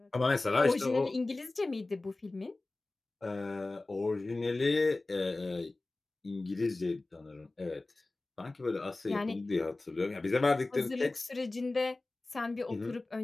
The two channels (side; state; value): right; quieter; 3.1 dB